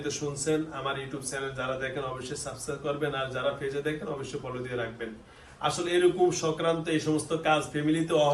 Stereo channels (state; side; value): identical; both; correlation 1.00